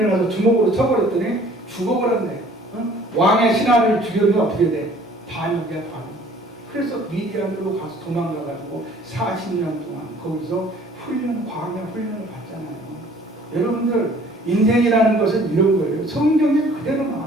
주먹으로 쳐버렸더니 죽어버렸네. 왕의 신하를 죽이면 어떻게 돼? 반역이야, 반역. 그래서 미디안으로 가서 도망가가지고 40년 동안 거기서 광야 훈련을 받잖아요. 여러분들 인생이라는 것은 이런 거예요. 성경에 그대로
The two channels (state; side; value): normal; both; correlation 0.54